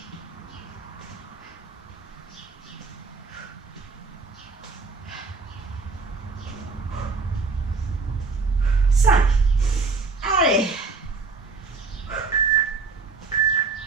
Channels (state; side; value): quieter; left; 4.3 dB